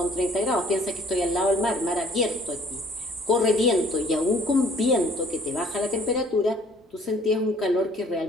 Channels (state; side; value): normal; both; correlation 0.56